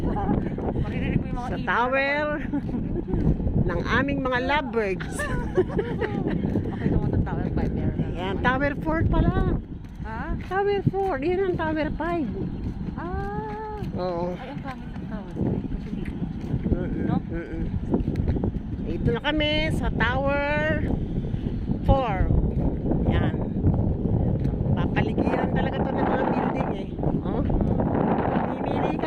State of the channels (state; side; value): identical; both; correlation 1.00